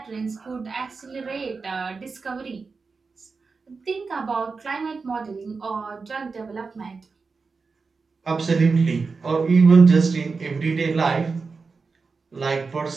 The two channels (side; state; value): left; quieter; 4.6 dB